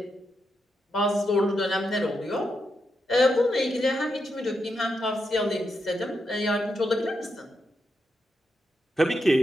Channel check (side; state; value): both; normal; correlation 0.84